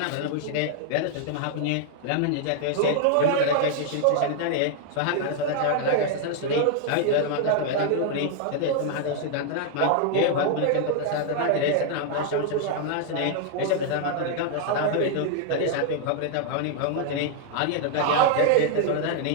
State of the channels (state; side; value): different; both; correlation 0.00